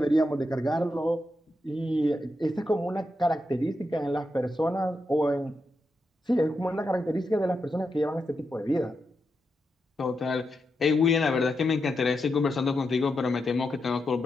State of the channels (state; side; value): normal; both; correlation 0.86